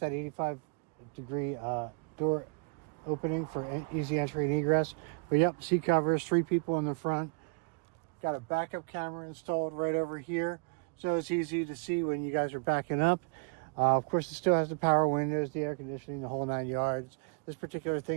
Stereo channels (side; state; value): left; quieter; 35.1 dB